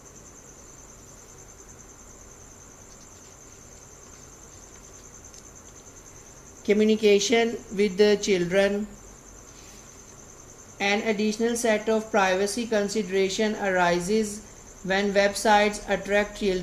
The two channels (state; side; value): identical; both; correlation 1.00